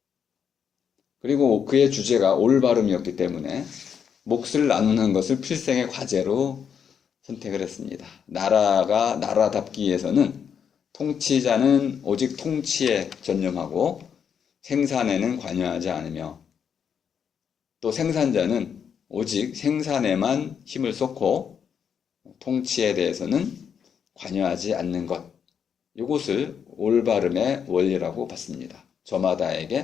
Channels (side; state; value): right; quieter; 7.5 dB